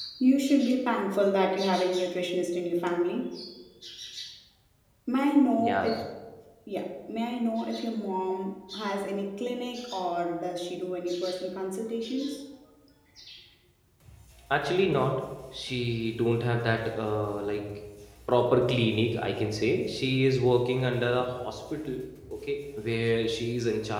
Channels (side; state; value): both; identical; correlation 1.00